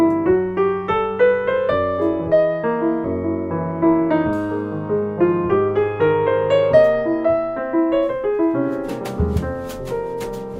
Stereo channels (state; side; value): identical; both; correlation 1.00